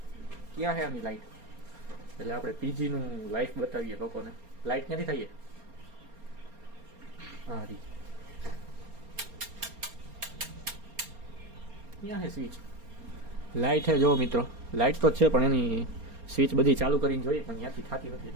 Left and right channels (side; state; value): left; late; 4.3 ms